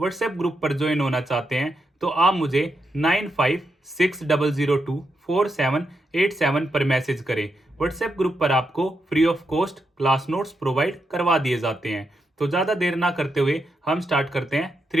ग्रुप पर ज्वाइन होना चाहते हैं तो आप मुझे 9560024787 पर मैसेज करें। व्हाट्सएप ग्रुप पर आपको free of cost class notes provide करवा दिए जाते हैं। तो ज़्यादा देर ना करते हुए हम स्टार्ट करते हैं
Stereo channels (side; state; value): both; normal; correlation 0.84